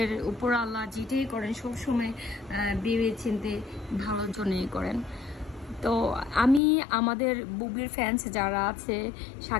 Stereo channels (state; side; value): drops out; right; at 6.6 s